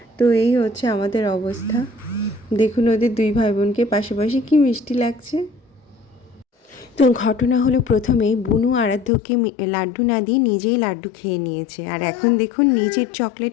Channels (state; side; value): drops out; right; at 9.1 s